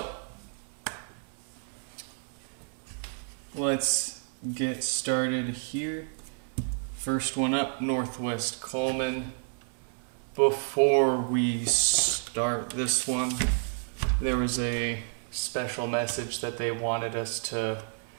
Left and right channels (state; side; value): silent; left; 58 dB below the other